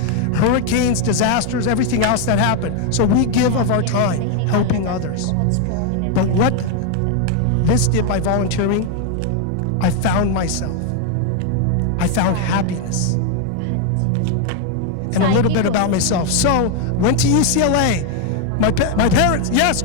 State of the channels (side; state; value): both; different; correlation 0.01